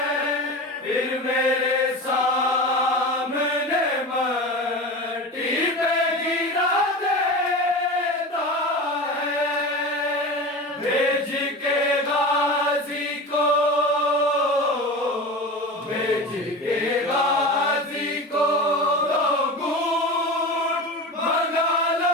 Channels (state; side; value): normal; both; correlation 0.29